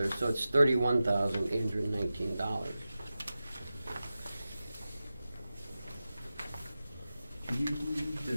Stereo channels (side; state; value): both; inverted; correlation -0.94